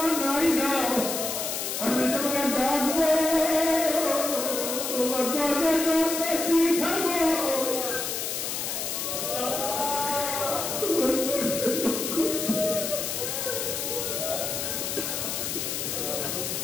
নাই দাও, আমি তোমাকে ডাকবো, তোমার দরজা করতে থাকবো।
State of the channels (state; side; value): noise; left; hiss, 2 dB below the sound